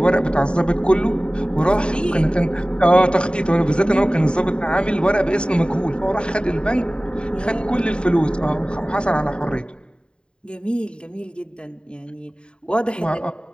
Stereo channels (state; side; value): late; right; 0.051 ms